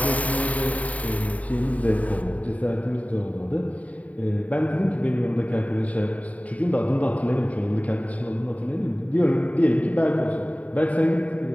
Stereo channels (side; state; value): right; late; 0.069 ms